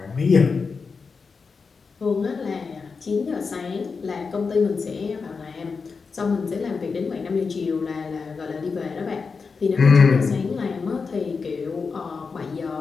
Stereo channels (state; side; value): quieter; right; 4.9 dB